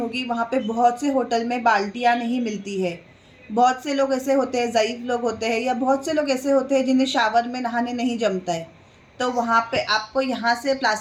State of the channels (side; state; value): both; identical; correlation 1.00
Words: वहाँ पे बहुत से होटल में बाल्टियाँ नहीं मिलती है। बहुत से लोग ऐसे होते हैं, ज़ईफ़ लोग होते हैं, या बहुत से लोग ऐसे होते हैं जिन्हें शावर में नहाने नहीं जमता है, तो वहाँ पे आपको यहाँ से